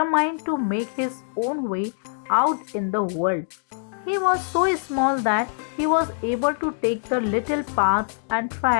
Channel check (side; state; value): right; silent; digital silence